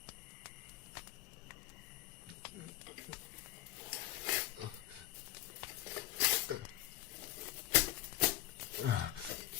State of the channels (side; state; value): right; quieter; 16.1 dB